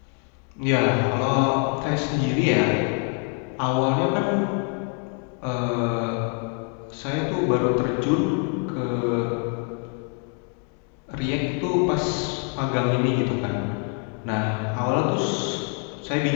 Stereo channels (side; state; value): right; quieter; 39.1 dB